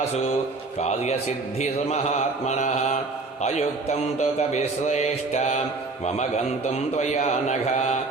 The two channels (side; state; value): left; quieter; 3.6 dB